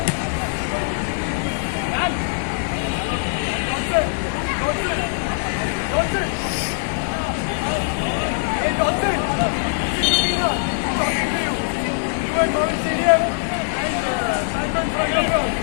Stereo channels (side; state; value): right; silent; 64 dB below the other